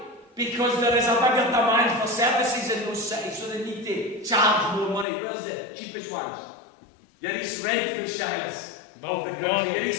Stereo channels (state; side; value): drops out; right; at 5.1 s